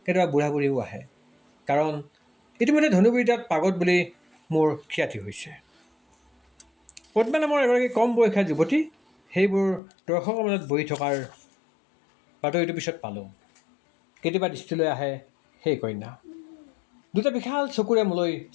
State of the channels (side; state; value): right; drops out; at 9.8 s